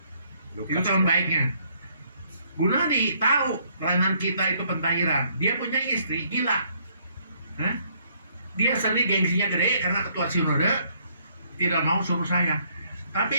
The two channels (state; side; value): inverted; both; correlation -0.67